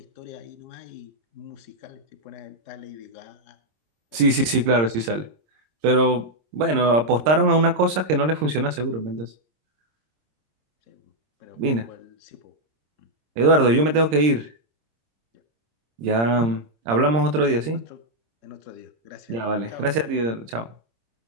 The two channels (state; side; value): late; left; 26 ms